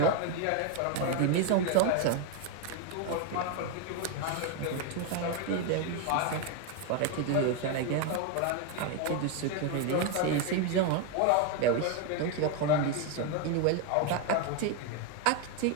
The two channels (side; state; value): both; different; correlation 0.01